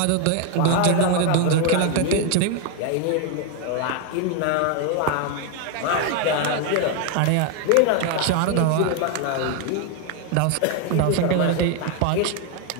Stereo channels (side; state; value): both; different; correlation 0.01